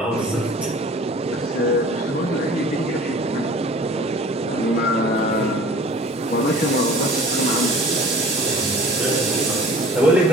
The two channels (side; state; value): both; normal; correlation 0.45